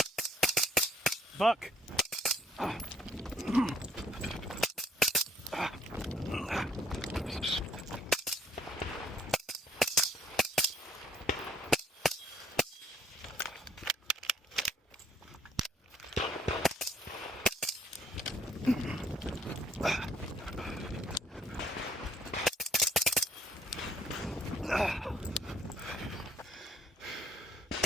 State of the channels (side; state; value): both; normal; correlation 0.63